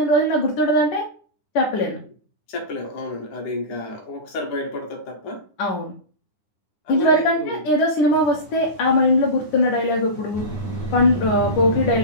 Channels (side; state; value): right; late; 9.8 ms